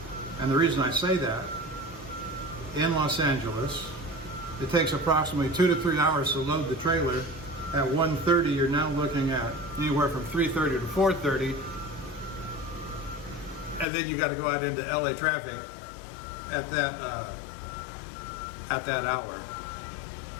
And the reason I say that, in Los Angeles, it takes approximately 2 to 3 hours to load the trailer. At 1:30, you're now looking at anywhere from 3:30 to 4:30. And then you got to go out into LA traffic at that hour.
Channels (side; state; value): right; drops out; at 13.9 s